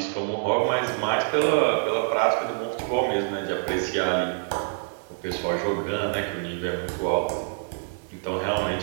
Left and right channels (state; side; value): silent; left; digital silence